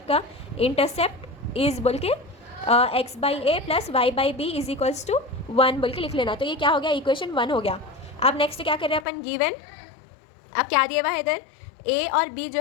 का, इंटरसेप्ट इज बोल के x by a plus y by b is equals to 1 बोल के लिख लेना। तो ये क्या हो गया, इक्वेशन 1 हो गया। अब नेक्स्ट क्या कर रहे हैं अपन, गिवन अब क्या दिया हुआ है इधर, ए और बी जो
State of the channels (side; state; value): right; drops out; at 9.1 s